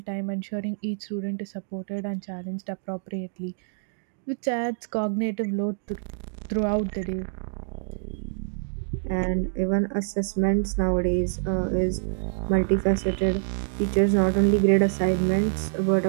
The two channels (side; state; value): left; silent; digital silence